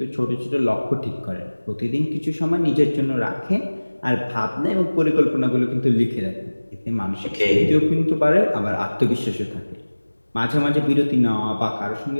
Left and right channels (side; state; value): both; inverted; correlation -1.00